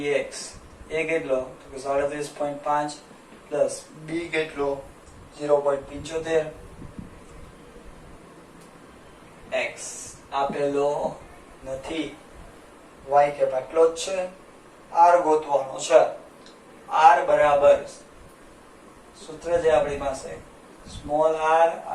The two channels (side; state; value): both; identical; correlation 1.00